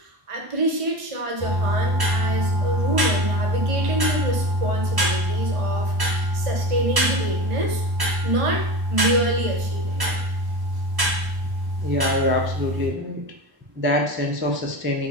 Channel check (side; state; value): left; late; 1.0 ms